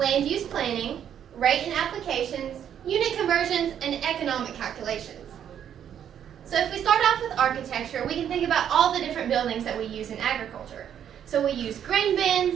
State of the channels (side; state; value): left; quieter; 9.3 dB